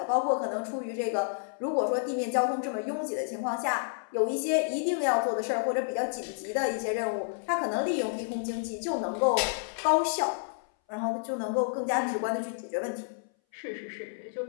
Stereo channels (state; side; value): silent; right; 58 dB below the other